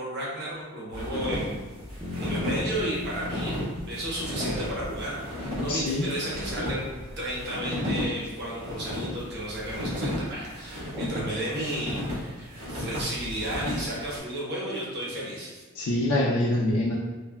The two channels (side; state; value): both; normal; correlation 0.40